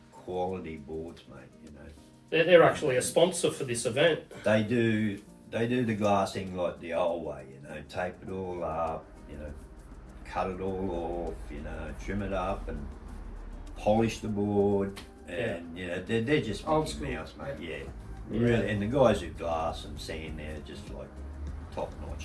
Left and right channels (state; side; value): identical; both; correlation 1.00